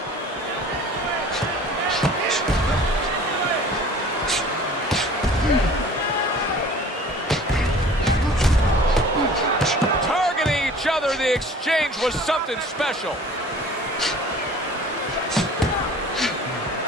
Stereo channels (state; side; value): normal; both; correlation 0.46